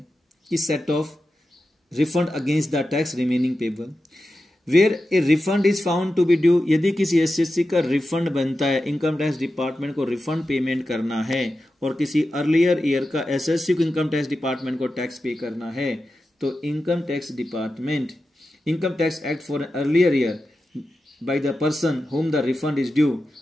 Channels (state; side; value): normal; both; correlation 0.91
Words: कि set off refund against the tax remaining payable where a refund is found to be due, यदि किसी एसएससी का रिफंड बनता है, इनकम टैक्स डिपार्टमेंट को रिफंड पेमेंट करना है और किसी अर्लियर ईयर का एसएससी को इनकम टैक्स डिपार्टमेंट को टैक्स पे करना है, तो income tax department income tax act for an earlier year by the person whom the refund is due